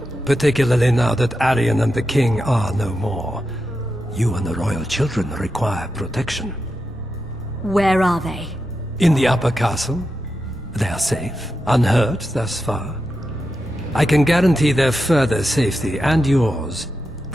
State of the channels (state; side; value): normal; both; correlation 0.88